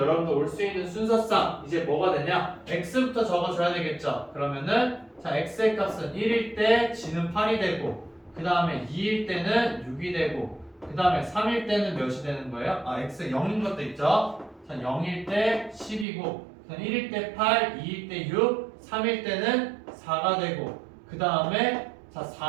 올 수 있는 순서상 이제 뭐가 되냐? x부터 적어줘야 되겠죠. 그러면은 자, x의 값은 1일 때 g는 8이 되고 그 다음에 2일 때는 6이 되고 그 다음에 3일 때는 몇이 되는 거예요? 아, x 0인 것도 있죠. 자, 0일 때 10이고 1일 때 8, 2일 때 6, 3일 때는 4가 되고 그 다음에 자,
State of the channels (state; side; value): drops out; left; at 16.1 s